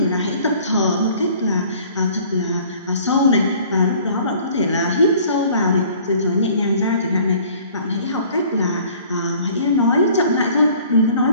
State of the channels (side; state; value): both; inverted; correlation -0.53